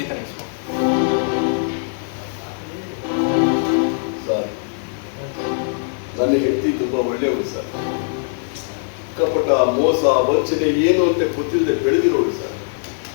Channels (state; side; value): silent; right; 61 dB below the other